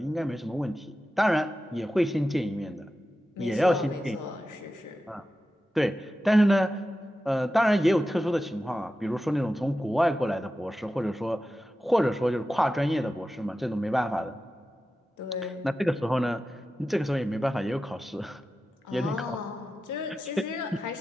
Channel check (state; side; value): normal; both; correlation 0.92